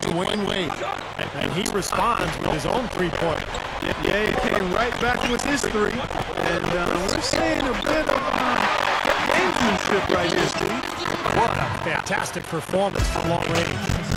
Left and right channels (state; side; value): identical; both; correlation 1.00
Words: Wade. And he responds with his own three-pointer. Yeah, he came right back with his 3. And we're seeing a bit of gamesmanship right here, Steve. What a fantastic performance from long range.